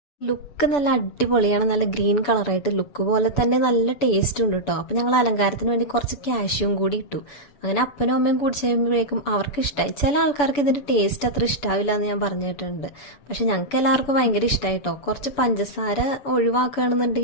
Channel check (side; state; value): right; late; 7.0 ms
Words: ലുക്ക് നല്ല അടിപൊളിയാണ്. നല്ല ഗ്രീൻ കളറായിട്ട് ലുക്ക് പോലെ തന്നെ നല്ല ടേസ്റ്റ് ഉണ്ട് കേട്ടോ. അപ്പം ഞങ്ങൾ അലങ്കാരത്തിന് വേണ്ടി കുറച്ച് കാഷ്യൂം കൂടി ഇട്ടു. അങ്ങനെ അപ്പനും അമ്മയും കുടിച്ച് കഴിയുമ്പോഴേക്കും അവർക്ക് ഇഷ്ടമായി. ചില ആൾക്കാർക്ക് ഇതിൻ്റെ ടേസ്റ്റ് അത്ര ഇഷ്ടാവില്ല എന്ന് ഞാൻ പറഞ്ഞു കേട്ടിട്ടുണ്ട്. പക്ഷെ ഞങ്ങൾക്ക് എല്ലാവർക്കും ഭയങ്കര ഇഷ്ടമായി കേട്ടോ. കുറച്ച് പഞ്ചസാര